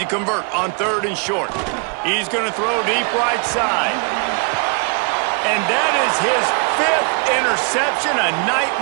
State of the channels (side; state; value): left; quieter; 37.7 dB